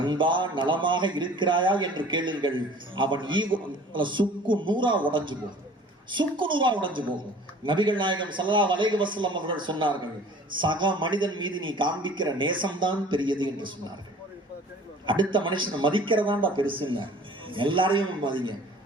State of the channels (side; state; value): both; normal; correlation 0.48